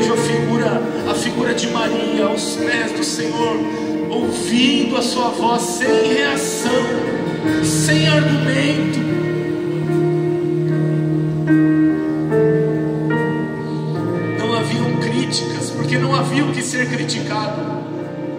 a figura de Maria aos pés do Senhor, ouvindo a sua voz sem reação, sem argumento. Não haviam críticas, porque não havia o que ser criticado,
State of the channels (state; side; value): identical; both; correlation 1.00